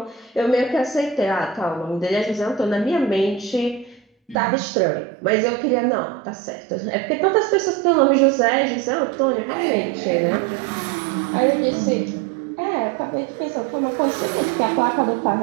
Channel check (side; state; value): left; drops out; at 4.4 s